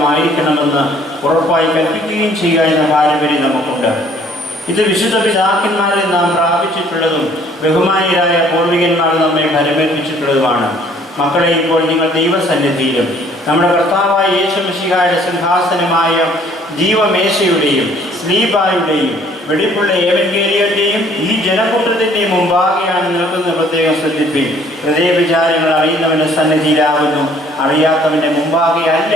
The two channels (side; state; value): both; normal; correlation 0.59